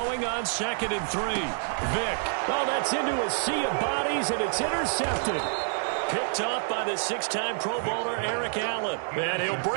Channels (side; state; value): left; silent; digital silence